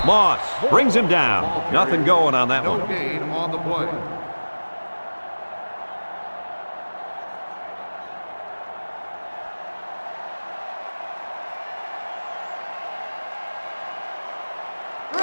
Moss brings him down. Nothing going on that No one. gain on the play.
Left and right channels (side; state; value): both; inverted; correlation -1.00